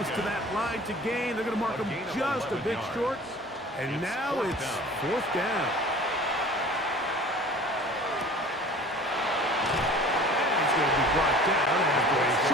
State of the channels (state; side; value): normal; both; correlation 0.44